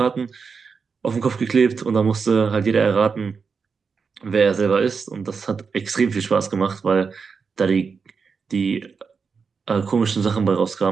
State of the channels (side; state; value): left; quieter; 5.4 dB